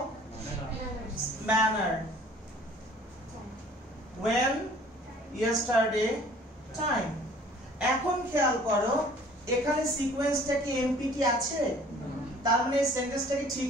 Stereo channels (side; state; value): both; normal; correlation 0.52